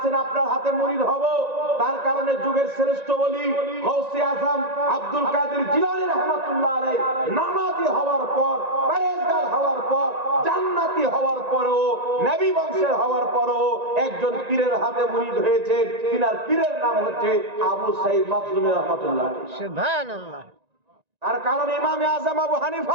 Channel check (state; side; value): late; left; 1.9 ms